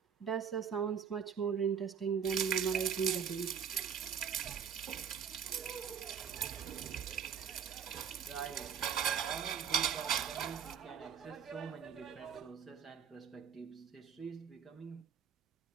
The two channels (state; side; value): quieter; left; 7.6 dB